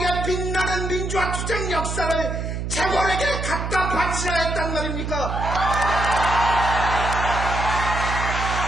빛나는 민주화 투쟁 역사를 재벌에게 갖다 바치라 했단 말입니까?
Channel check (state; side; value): noise; right; hum, 4 dB below the sound